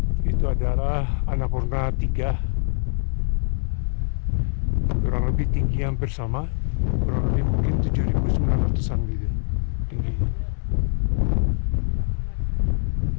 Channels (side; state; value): right; silent; 61 dB below the other